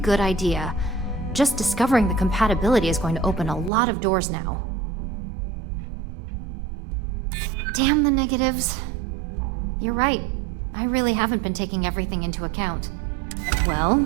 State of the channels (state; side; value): drops out; left; at 3.7 s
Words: idea. Just discovering the compatibility is going to open a lot of doors now. Damn the negatives. You're right. I really haven't been taking everything into account.